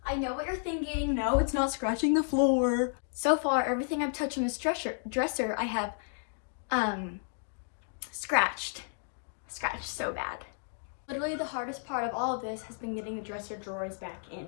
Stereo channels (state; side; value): silent; right; digital silence